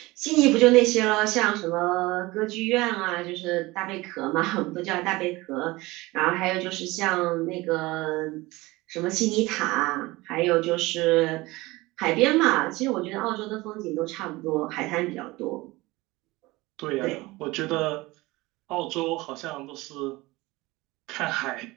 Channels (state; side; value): quieter; left; 20.9 dB